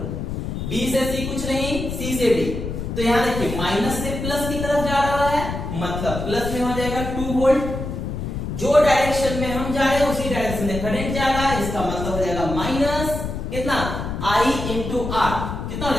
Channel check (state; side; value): noise; left; rumble, 5 dB below the sound